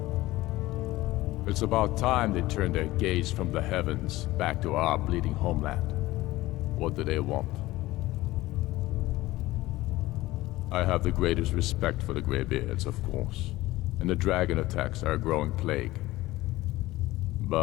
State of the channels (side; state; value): right; quieter; 17.9 dB